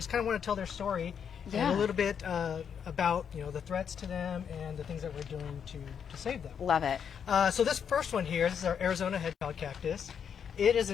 kind of want to tell their story Yeah. and a little bit about the threats to them and the things that we're doing to save them. Love it. So this first one here, this is our Arizona hedgehog cactus. It is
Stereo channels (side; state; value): right; quieter; 7.6 dB